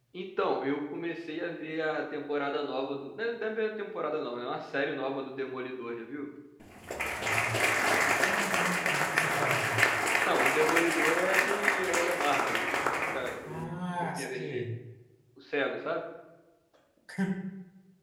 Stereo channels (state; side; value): identical; both; correlation 1.00